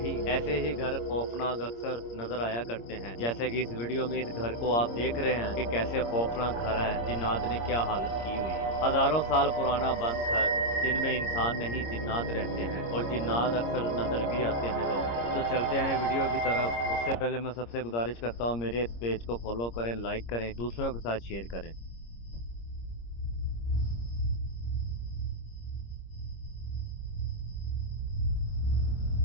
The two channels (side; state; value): right; late; 26 ms